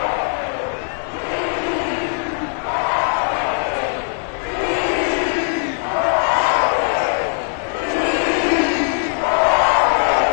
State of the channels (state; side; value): silent; right; 57 dB below the other